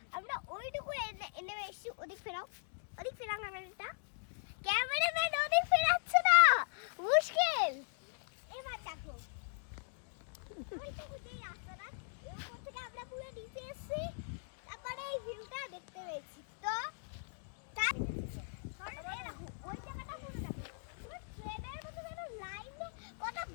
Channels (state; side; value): silent; right; digital silence